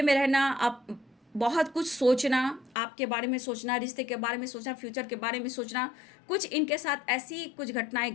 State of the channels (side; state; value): right; drops out; at 2.8 s